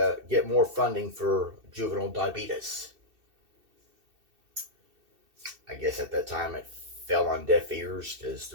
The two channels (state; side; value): late; left; 2.7 ms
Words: get more funding for juvenile diabetes. I guess at that time it fell on deaf ears because